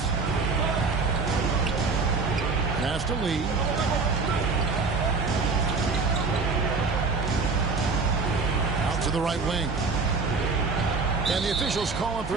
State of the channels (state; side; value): quieter; left; 4.3 dB